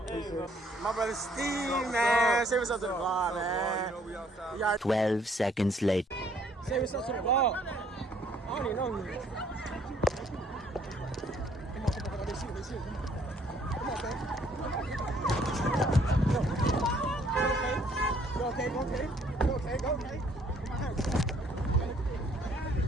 Appreciate it. My brother Steve, man. Say what's up to the vlog, man. 12 seconds later. Say what's up to the vlog. I don't even know you. Come on, they shoot. Come on, man. Go okay.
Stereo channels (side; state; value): both; normal; correlation 0.63